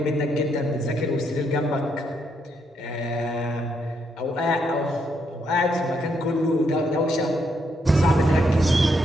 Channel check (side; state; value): both; normal; correlation 0.77